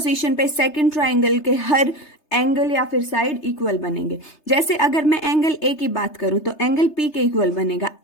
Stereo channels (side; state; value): right; late; 3.3 ms